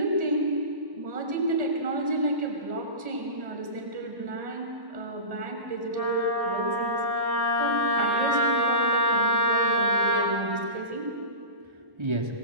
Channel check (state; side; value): late; left; 1.1 ms